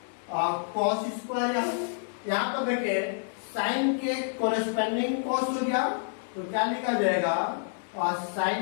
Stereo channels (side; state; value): right; silent; digital silence